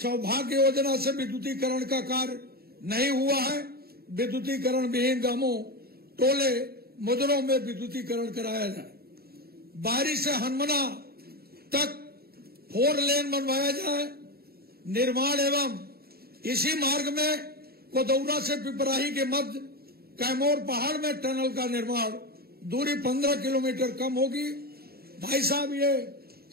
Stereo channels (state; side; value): late; left; 0.45 ms